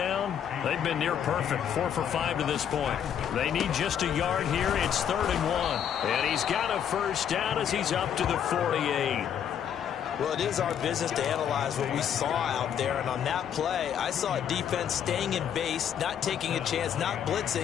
they've been near perfect. 4 for 5 to this point. They need just a yard here. It's 3rd and 1. And he's got a first down as he's up to the 48. Well, it is our business to analyze what we saw out there. And on that play, I saw a defense staying in base, not taking a chance, not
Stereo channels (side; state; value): right; quieter; 8.9 dB